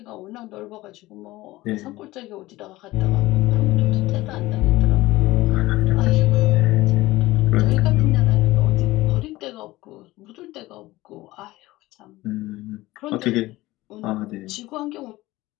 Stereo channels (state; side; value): quieter; right; 18.4 dB